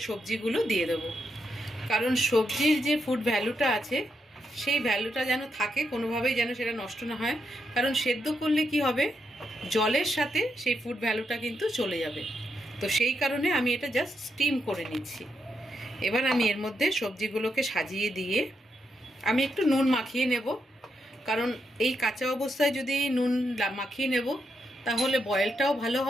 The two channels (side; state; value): both; normal; correlation 0.82